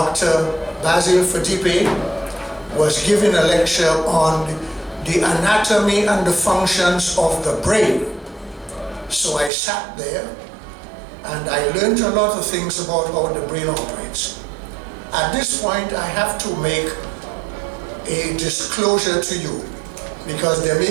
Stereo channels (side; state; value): left; drops out; at 9.5 s